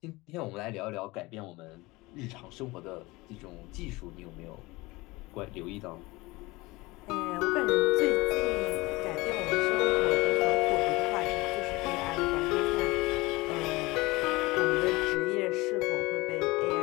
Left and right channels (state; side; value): quieter; right; 22.0 dB